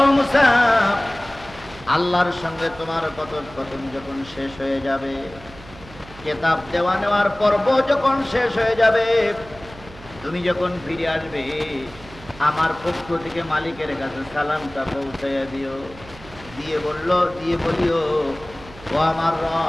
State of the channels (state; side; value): noise; right; hum, 19 dB below the sound